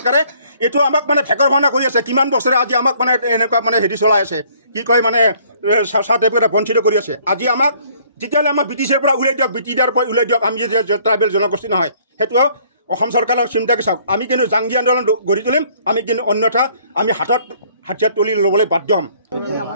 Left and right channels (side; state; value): both; inverted; correlation -0.60